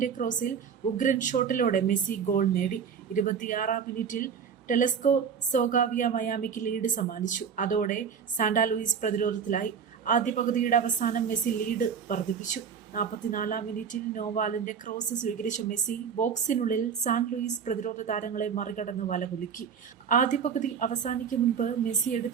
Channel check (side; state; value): left; quieter; 7.0 dB